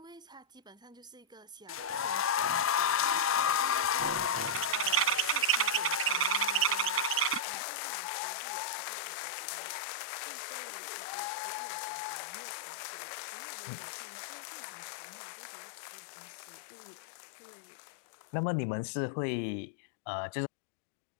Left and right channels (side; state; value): right; drops out; at 7.4 s